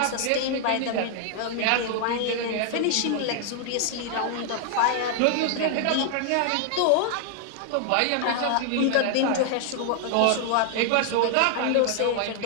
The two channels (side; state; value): both; different; correlation 0.00